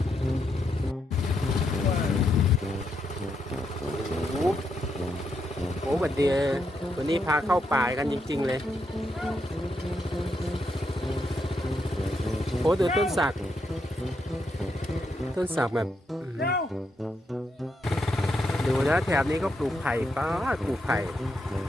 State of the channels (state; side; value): normal; both; correlation 0.80